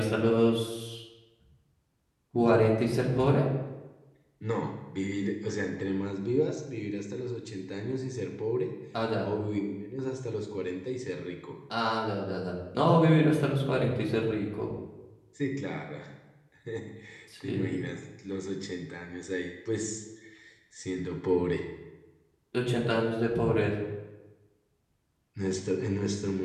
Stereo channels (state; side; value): identical; both; correlation 1.00